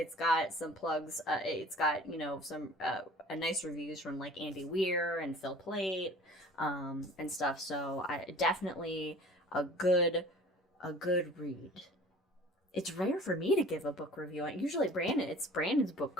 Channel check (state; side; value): normal; both; correlation 0.46